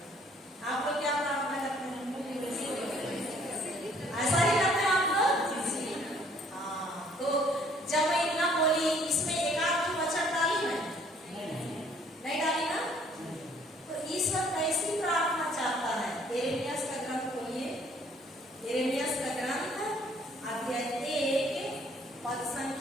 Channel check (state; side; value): normal; both; correlation 0.61